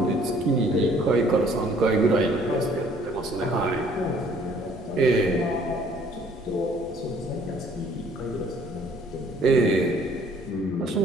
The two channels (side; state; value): both; normal; correlation 0.59